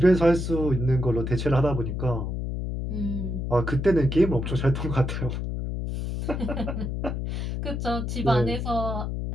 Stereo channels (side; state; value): left; noise; hum, 3 dB below the sound